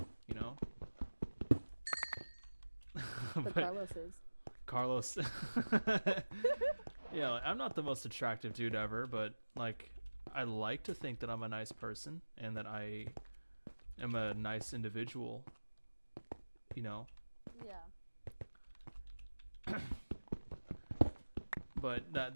But Carlos is. Carlos. Yeah, I'm not the most attractive dude ever, but like I like to think that I'm a nice person and that I am a nice individual. Yeah. But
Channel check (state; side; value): inverted; both; correlation -1.00